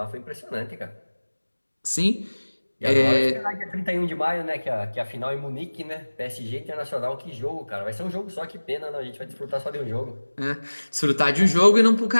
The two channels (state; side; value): inverted; both; correlation -1.00